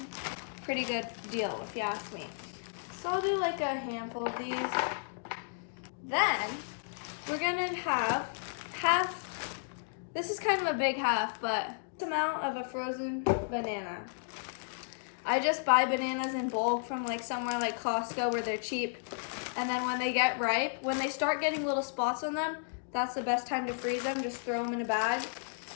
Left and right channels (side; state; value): right; silent; digital silence